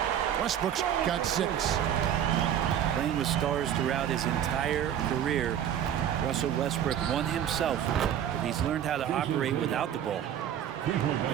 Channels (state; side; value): quieter; left; 10.0 dB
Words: Westbrook's got 6. Playing with stars throughout his entire career, Russell Westbrook won himself, but he's learned how to operate without the ball.